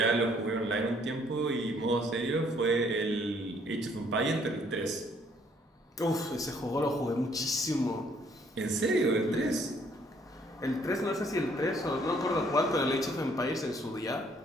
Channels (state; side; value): normal; both; correlation 0.64